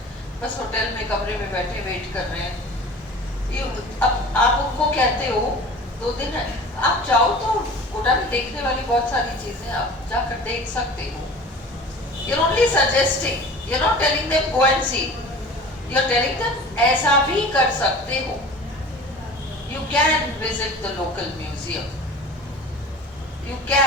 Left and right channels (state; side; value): normal; both; correlation 0.40